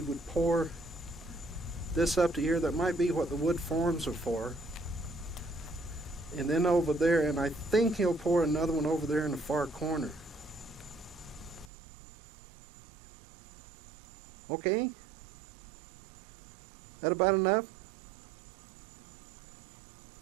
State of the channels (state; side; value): drops out; left; at 11.7 s